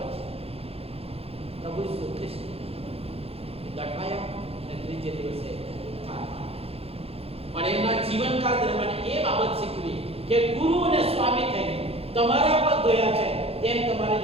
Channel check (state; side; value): late; left; 0.29 ms